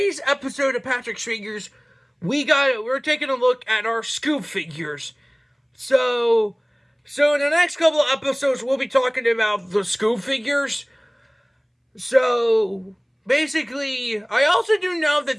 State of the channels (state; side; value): identical; both; correlation 1.00